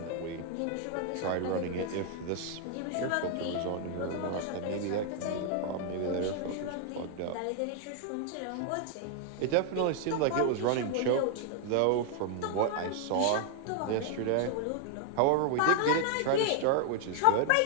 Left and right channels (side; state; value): both; different; correlation 0.00